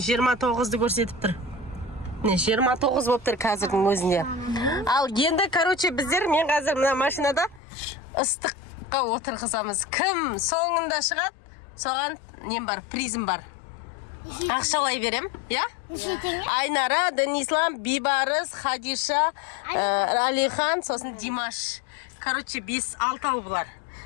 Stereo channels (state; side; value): drops out; right; at 7.6 s